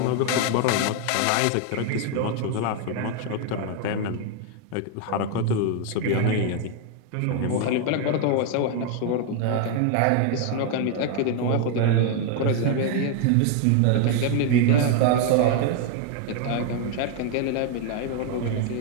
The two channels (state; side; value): different; both; correlation 0.00